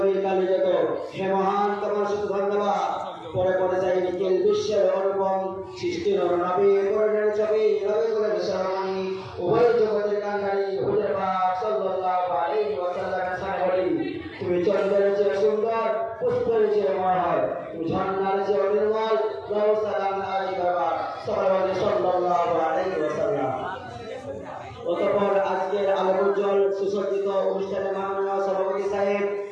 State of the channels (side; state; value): both; identical; correlation 1.00